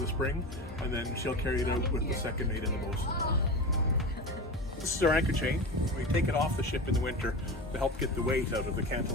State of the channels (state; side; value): normal; both; correlation 0.27